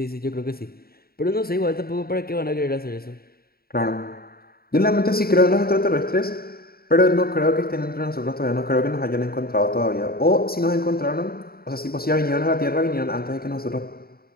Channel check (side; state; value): right; late; 0.44 ms